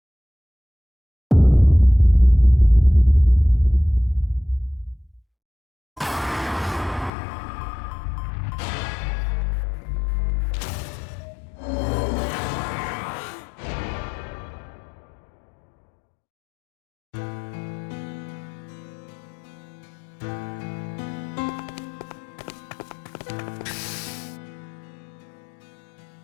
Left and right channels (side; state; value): right; drops out; at 7.1 s